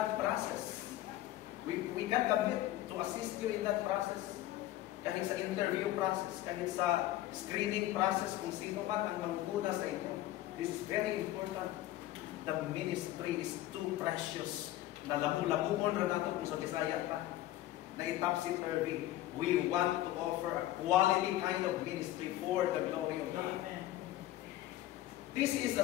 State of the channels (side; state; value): right; quieter; 14.8 dB